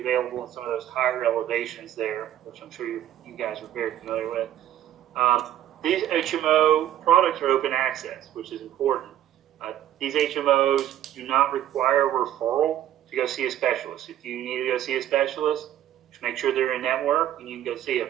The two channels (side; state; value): left; quieter; 11.8 dB